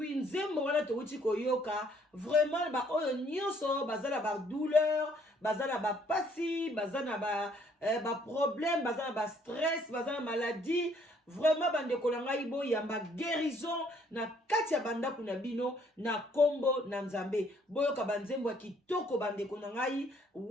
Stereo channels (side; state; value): both; normal; correlation 0.64